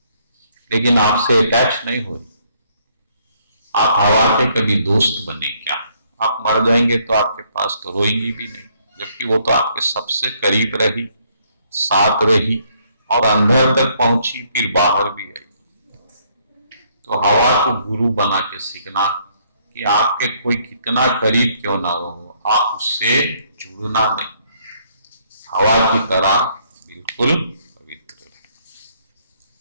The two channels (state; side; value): inverted; both; correlation -0.68